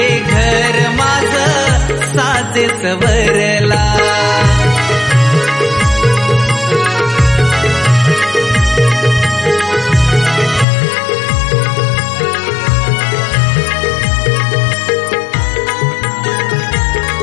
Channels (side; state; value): right; drops out; at 10.7 s